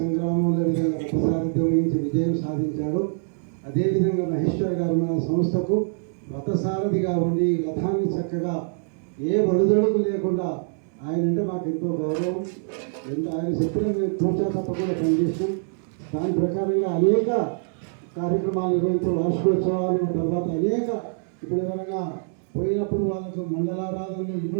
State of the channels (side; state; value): left; silent; digital silence